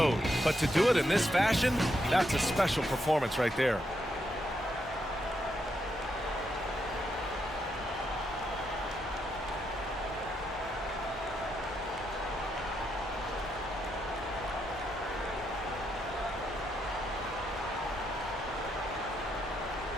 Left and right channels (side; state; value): both; normal; correlation 0.80